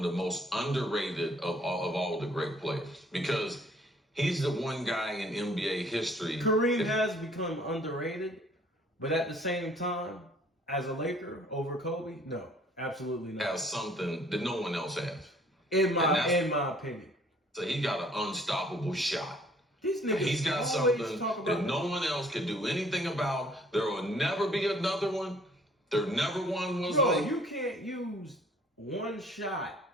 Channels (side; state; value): both; normal; correlation 0.58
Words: the most underrated of all the great players, because he's the one guy in NBA history. Kareem has become underrated, but at the same time, as a Laker over Kobe, no, absolutely not. Has something that no one else has. In my opinion. So he got an unstoppable shot. He's got something that no one else can do anything about. There will never be another one. There never one was like. You can't use one shot